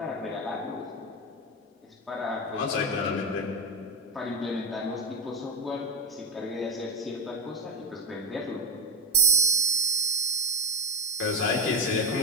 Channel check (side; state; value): both; normal; correlation 0.12